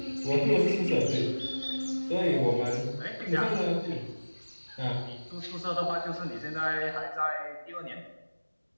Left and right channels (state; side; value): inverted; both; correlation -1.00